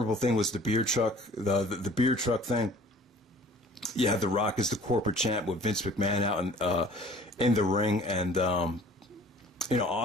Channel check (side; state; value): both; normal; correlation 0.49